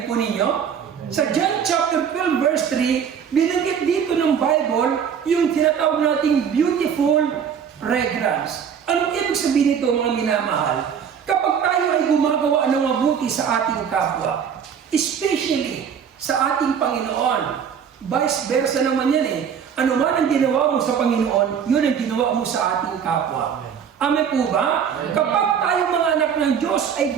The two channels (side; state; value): left; quieter; 7.6 dB